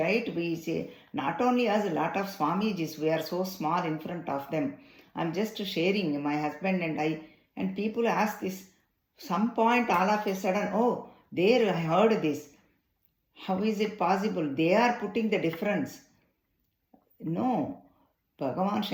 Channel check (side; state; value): both; identical; correlation 1.00